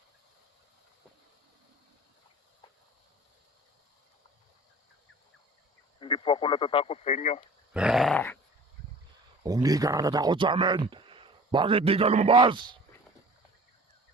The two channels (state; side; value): normal; both; correlation 0.44